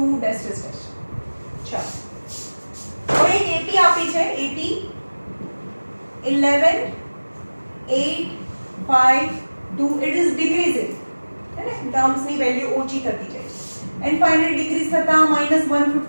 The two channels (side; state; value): both; inverted; correlation -1.00